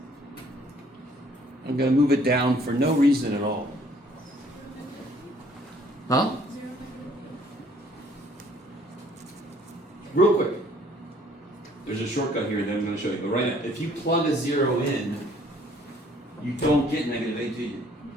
I'm going to move it down for no reason at all. Huh? Real quick. There's a shortcut here that I'm going to show you. But right now, if you plug a 0 in, you don't get -8, do you?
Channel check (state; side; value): normal; both; correlation 0.59